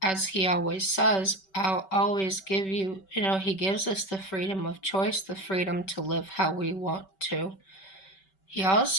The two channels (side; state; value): right; late; 5.2 ms